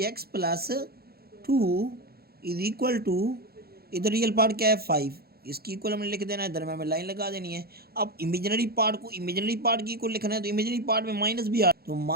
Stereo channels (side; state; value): left; late; 0.45 ms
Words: + 2 इज इक्वल टू, इधर रियल पार्ट क्या है, 5। इसकी इक्वल हमने लिख देना है, दरम्यान में लाइन लगा देनी है। अब इमेजिनरी पार्ट को इमेजिनरी पार्ट की इक्वल लिखना है, तो इमेजिनरी पार्ट में माइनस भी आ, तो